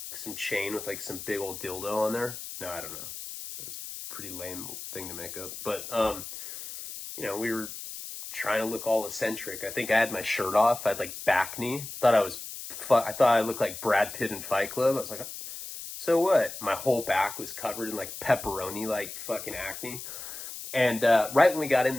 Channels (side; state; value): left; noise; hiss, 10 dB below the sound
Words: some chain with like some big old dildo on there. No, I don't know. That's a pretty lame thing to make up. But, you know, we were trying to look all eccentric. I think I had my shirt off. I had like back knee. I thought I looked like Brad Pitt in Fight Club. I was like, so what? My whole back was covered in like pepperoni, like fucking acne. And right when we got in